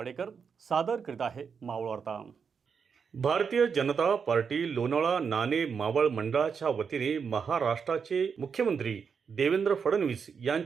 सादर करीत आहे मावळ वार्ता। भारतीय जनता पार्टी लोणावळा नाणे मावळ मंडळाच्या वतीने महाराष्ट्राचे मुख्यमंत्री देवेंद्र फडणवीस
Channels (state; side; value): quieter; left; 6.2 dB